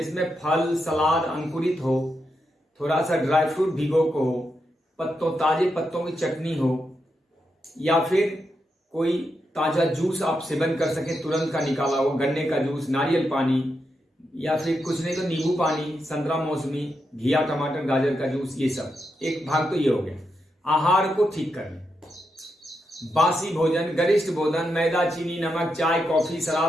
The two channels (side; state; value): both; normal; correlation 0.84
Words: फल सलाद अंकुरित हो, थोड़ा सा ड्राई फ्रूट भिगो को हो, ताजे पत्तों की चटनी हो, या फिर कोई ताजा जूस आप सेवन कर सके तुरंत का निकाला हो, गन्ने का जूस, नारियल पानी, या फिर कुछ नहीं तो नींबू पानी, संतरा मौसमी, घिया टमाटर गाजर का जूस, ये सब एक भाग तो ये हो गया। आहार को ठीक कर लें। बासी भोजन, गरिष्ठ भोजन, मैदा, चीनी, नमक, चाय, कॉफी,